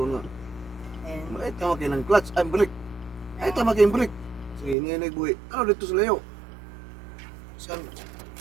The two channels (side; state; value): left; drops out; at 4.8 s